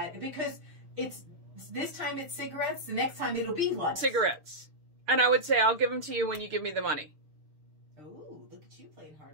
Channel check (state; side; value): late; left; 6.6 ms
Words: because this time it's cigarettes, the next time it'll be lunch. Cigarettes. And I would say, I'll give them to you when you give me the money. Oh, look at you playing